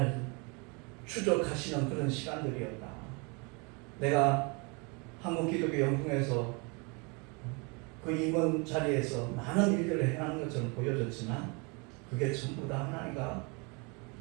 추적하시는 그런 시간들이었다. 내가 한국기독교 영풍에서 그 임원 자리에서 많은 일들을 행하는 것처럼 보여졌지만 그게 전부 다 하나님과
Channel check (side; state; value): left; quieter; 30.8 dB